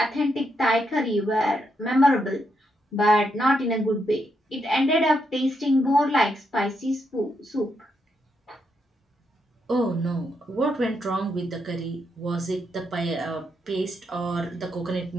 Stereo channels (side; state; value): both; normal; correlation 0.80